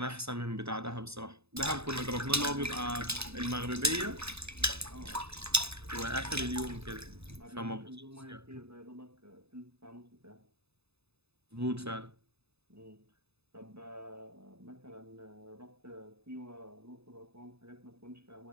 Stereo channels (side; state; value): left; late; 0.79 ms